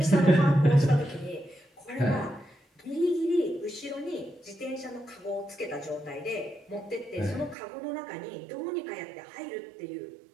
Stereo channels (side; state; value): left; drops out; at 7.6 s